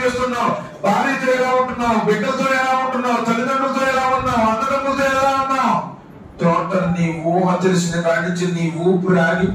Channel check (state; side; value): identical; both; correlation 1.00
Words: చేస్తున్నావు, భార్యతో ఎలా ఉంటున్నావు, బిడ్డలతో ఎలా ఉంటున్నావు, తల్లిదండ్రులతో ఎలా ఉన్నావు, అన్నదమ్ములతో ఎలా ఉన్నావు, టోటల్ నీ ఊహ తెలిసిన కాడి నుంచి నీ ఊపిరి